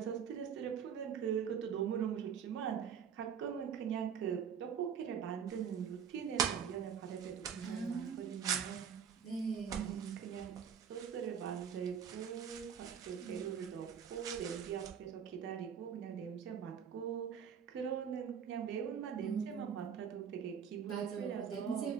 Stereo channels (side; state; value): left; quieter; 7.6 dB